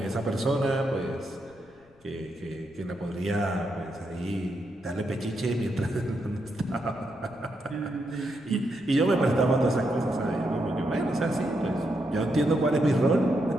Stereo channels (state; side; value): noise; left; rumble, 30 dB below the sound